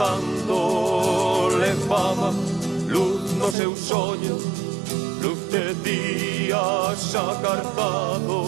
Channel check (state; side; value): drops out; left; at 3.6 s